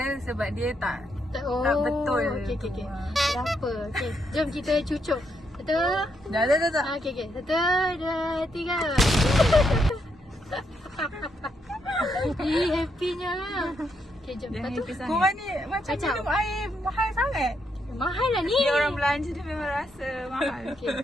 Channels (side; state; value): both; normal; correlation 0.78